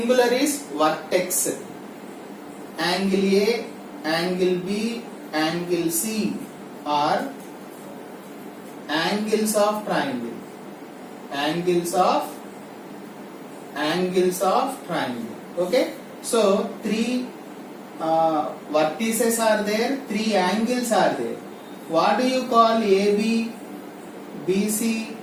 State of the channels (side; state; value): both; identical; correlation 1.00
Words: is vertex. Angle A, angle B, angle C are angles of triangle. Angles of triangle. Okay, so 3 vertices are there, 3 angles are there. What do you call AB, BC,